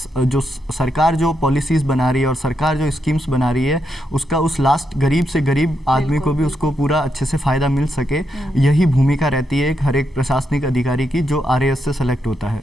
जो सरकार जो पॉलिसीज़ बना रही है और सरकार जो स्कीम्स बना रही है उसका उस लास्ट गरीब से गरीब आदमी को भी उसको पूरा अच्छे से फ़ायदा मिल सके। यही भूमिका रहती है हर एक प्रशासनिक अधिकारी की जो आरएएस से सेलेक्ट होता है।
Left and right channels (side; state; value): both; normal; correlation 0.82